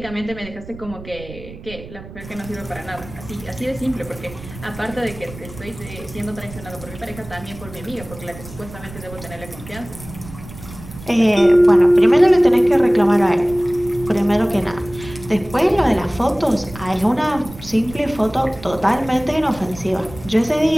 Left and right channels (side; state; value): right; noise; rumble, 16 dB below the sound